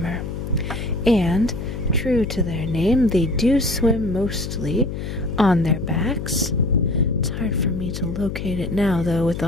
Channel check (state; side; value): noise; left; hum, 6 dB below the sound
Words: And true to their name, they do swim mostly on their backs. It's hard for me to locate it now, though, with